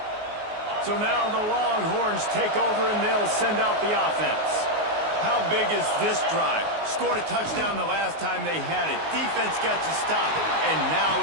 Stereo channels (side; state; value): left; late; 19 ms